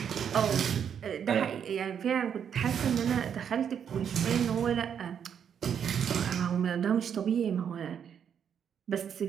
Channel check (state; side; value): quieter; left; 8.1 dB